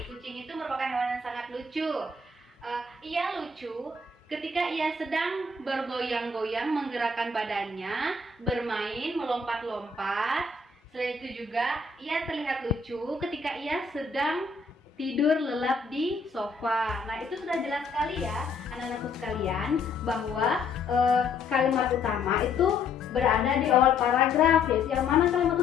Kucing itu merupakan hewan yang sangat lucu. Ia lucu ketika ia sedang bergoyang-goyang menggerakkan badannya, bermain, melompat-lompat. Selain itu juga ia terlihat lucu ketika ia sedang tidur lelap di sofa. Nah, itu sudah jelas sekali ya anak-anakku sekalian bahwa kalimat utama itu berada di awal paragraf, yaitu yang mana kalimat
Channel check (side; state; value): right; quieter; 3.8 dB